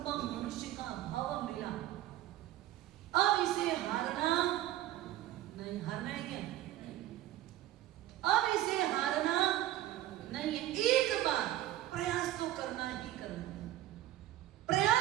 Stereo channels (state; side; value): quieter; left; 14.0 dB